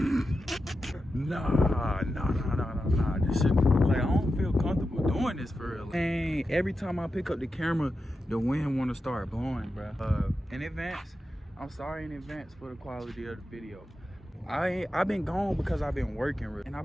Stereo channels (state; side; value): normal; both; correlation 0.90